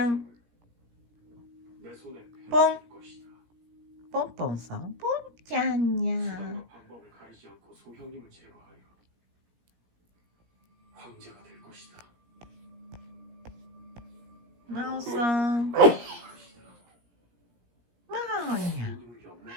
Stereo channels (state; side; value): late; left; 17 ms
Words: ん。ポン。ポンポンさん。ポンちゃんにゃ。まおさん。まおにゃ。